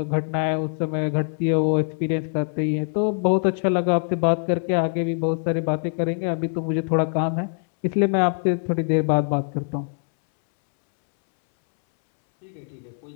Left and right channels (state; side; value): silent; right; 63 dB below the other